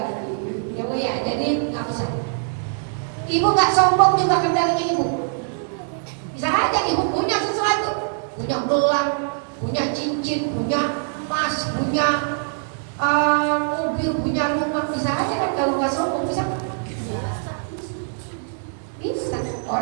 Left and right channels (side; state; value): left; silent; digital silence